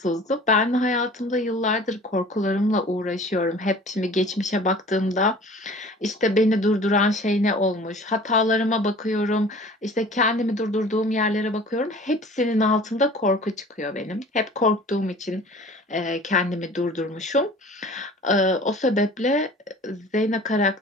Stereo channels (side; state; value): both; normal; correlation 0.45